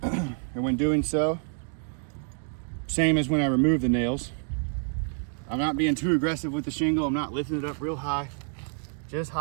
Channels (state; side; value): silent; left; 58 dB below the other